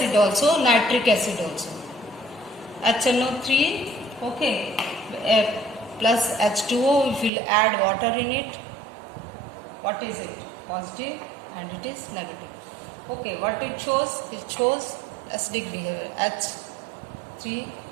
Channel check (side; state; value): left; drops out; at 7.3 s